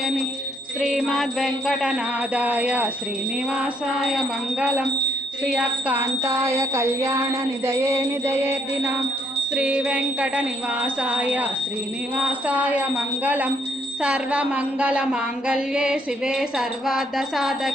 श्रीमद्वेङ्कटनाथाय श्रीनिवासाय मङ्गलम् श्रियकान्ताय कल्याणनिधये निधयेर्दिनाम् श्रीवेङ्कटनिवासाय श्रीनिवासाय मङ्गलम् सर्वमङ्गलमाङ्गल्ये शिवे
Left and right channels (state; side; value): normal; both; correlation 0.70